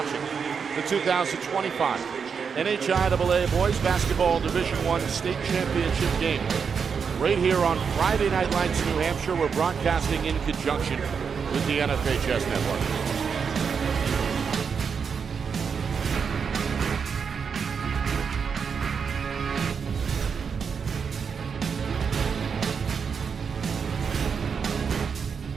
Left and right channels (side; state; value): left; quieter; 6.2 dB